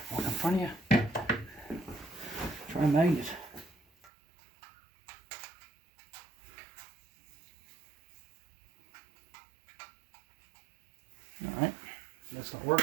walk in front of you. Try a magnet. Alright, that's not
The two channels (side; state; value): left; drops out; at 4.1 s